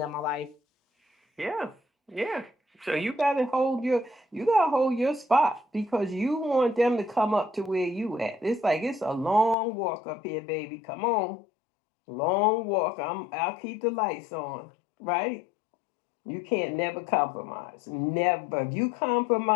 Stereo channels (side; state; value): right; drops out; at 9.6 s